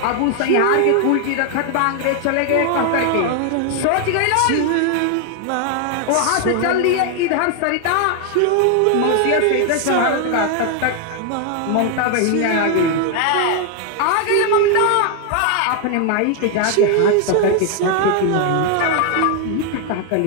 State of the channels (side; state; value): both; different; correlation 0.00